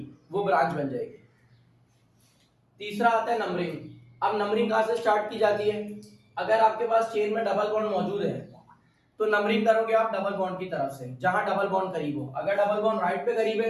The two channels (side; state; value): both; identical; correlation 1.00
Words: वो ब्रांच बन जाएगी। तीसरा आता है नंबरिंग। अब नंबरिंग कहां से स्टार्ट की जाती है? अगर आपके पास चेन में डबल बॉन्ड मौजूद है तो नंबरिंग करोगे आप डबल बॉन्ड की तरफ से, जहां डबल बॉन्ड करीब हो। अगर डबल बॉन्ड राइट पे करीब